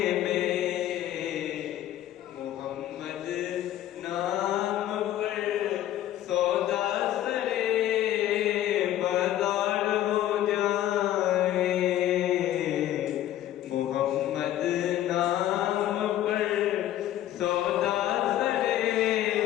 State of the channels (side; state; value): right; quieter; 12.7 dB